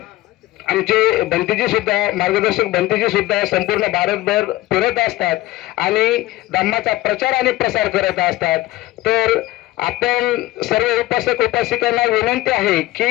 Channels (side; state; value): right; quieter; 17.3 dB